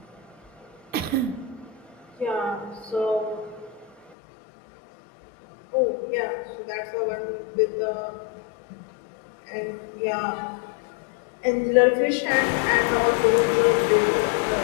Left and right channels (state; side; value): drops out; right; at 4.2 s